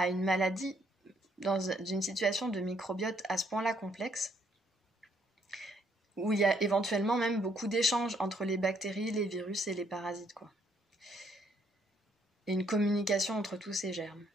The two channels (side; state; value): both; normal; correlation 0.69